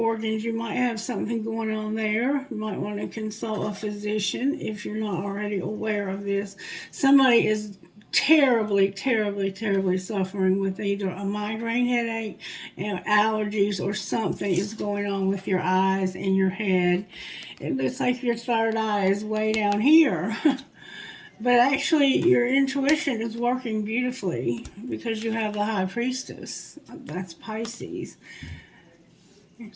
you might have something going on there. You might want to consult a physician if you're not already aware of this. Somebody is terribly suffering with either a migraine headache, allergies, or something is going on with your eyes and your head. It looks like your third eye is way down here. But actually, your intuition is working beautifully because you have the High Priestess. That's Pisces.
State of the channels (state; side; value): identical; both; correlation 1.00